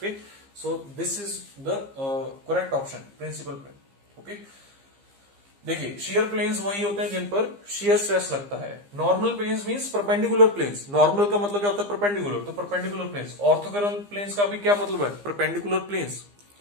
so this is the correct option, principal plane. Okay, देखिए शियर प्लेन्स वही होते हैं जिन पर शियर स्ट्रेस लगता है। Normal planes means perpendicular planes. Normal का मतलब क्या होता है? परपेंडिकुलर, तो परपेंडिकुलर प्लेन्स। ऑर्थोगोनल प्लेन्स का भी क्या मतलब है? Perpendicular planes.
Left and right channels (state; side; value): late; left; 15 ms